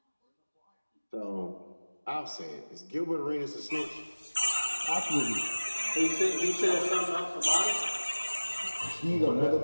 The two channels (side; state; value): both; inverted; correlation -1.00